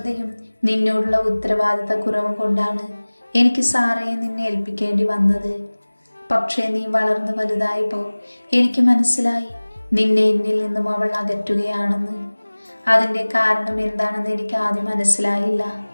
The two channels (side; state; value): both; inverted; correlation -1.00